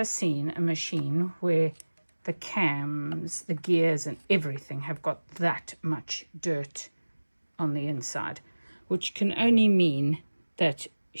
seen a machine where the cams, the gears and everything have got that much dirt on the inside, which can only mean that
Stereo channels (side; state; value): both; inverted; correlation -1.00